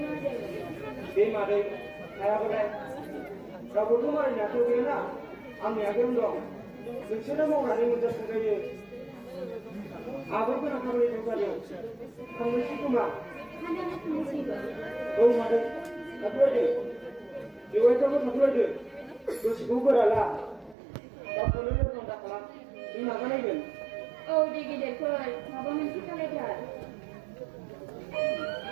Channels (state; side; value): drops out; left; at 20.8 s